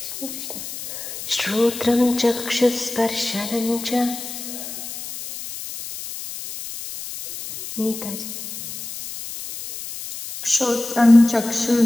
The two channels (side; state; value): left; noise; hiss, 9 dB below the sound